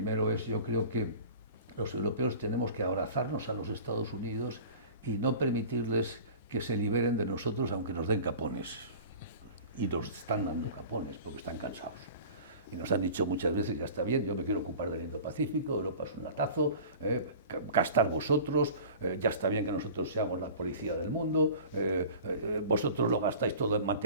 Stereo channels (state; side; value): inverted; both; correlation -0.40